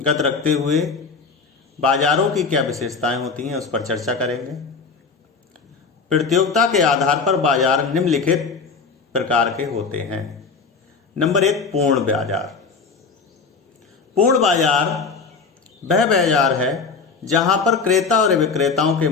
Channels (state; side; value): quieter; right; 4.8 dB